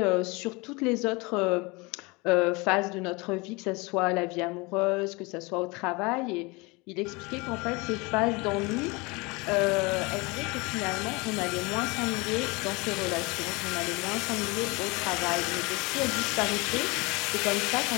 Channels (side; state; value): right; quieter; 26.1 dB